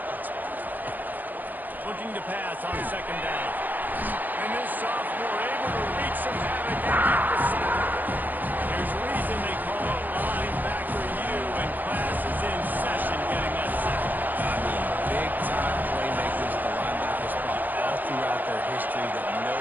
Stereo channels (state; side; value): late; left; 0.087 ms